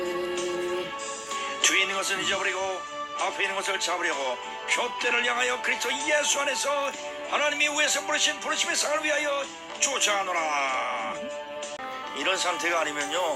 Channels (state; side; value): identical; both; correlation 1.00